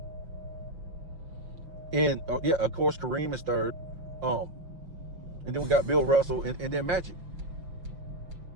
And of course Kareem is 3rd. And then we got Bill Russell and then Magic.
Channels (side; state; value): left; late; 5.9 ms